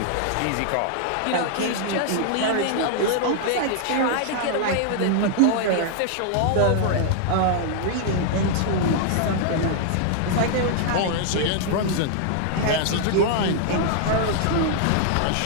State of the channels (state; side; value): different; both; correlation -0.01